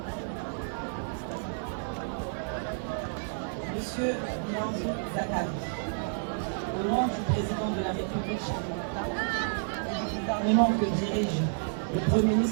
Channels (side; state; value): left; silent; 58 dB below the other